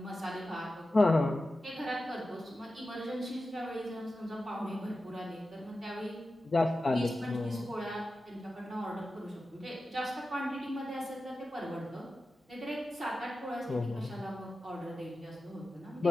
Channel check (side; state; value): both; normal; correlation 0.93